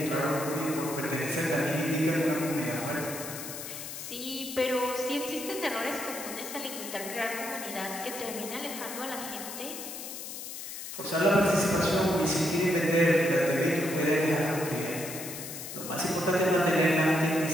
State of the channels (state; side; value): noise; left; hiss, 9 dB below the sound